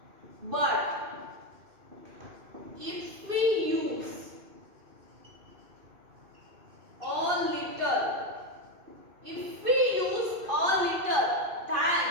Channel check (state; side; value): late; left; 2.5 ms